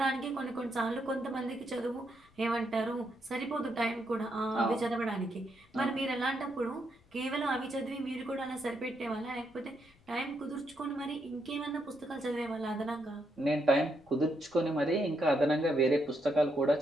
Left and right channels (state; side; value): noise; left; rumble, 29 dB below the sound